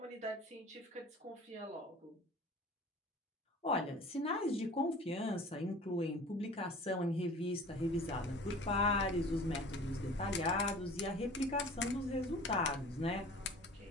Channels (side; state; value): both; normal; correlation 0.43